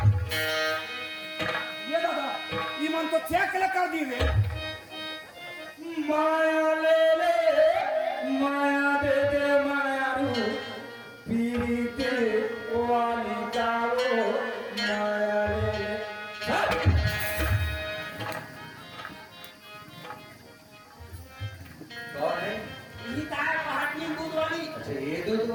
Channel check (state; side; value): identical; both; correlation 1.00